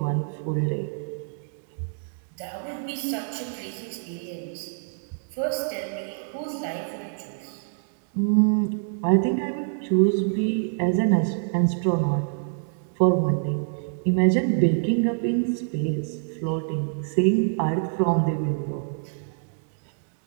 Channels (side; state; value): left; silent; 61 dB below the other